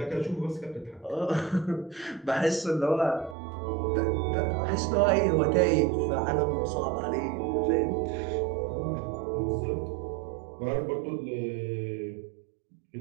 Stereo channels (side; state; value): left; drops out; at 3.4 s